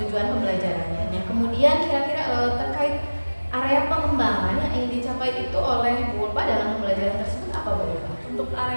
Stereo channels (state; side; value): inverted; both; correlation -1.00